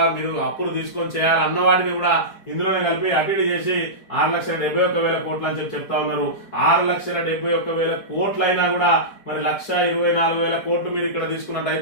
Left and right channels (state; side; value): late; right; 4.6 ms